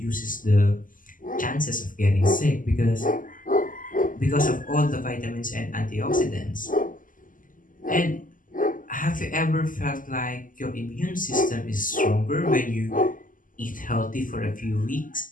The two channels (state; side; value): late; right; 0.39 ms